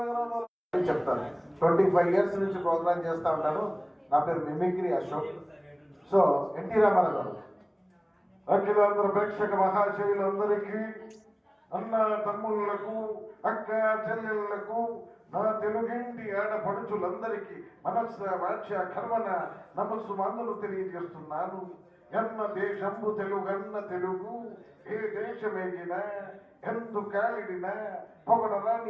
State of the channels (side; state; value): both; identical; correlation 1.00